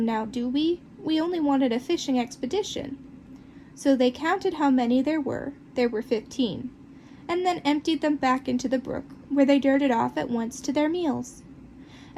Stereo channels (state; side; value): identical; both; correlation 1.00